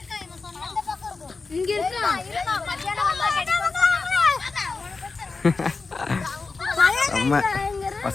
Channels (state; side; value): quieter; right; 4.2 dB